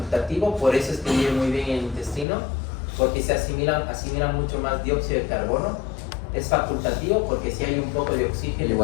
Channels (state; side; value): drops out; right; at 2.2 s